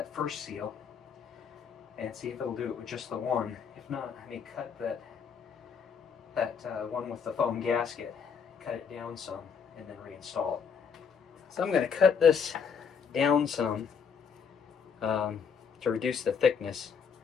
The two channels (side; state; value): right; quieter; 6.4 dB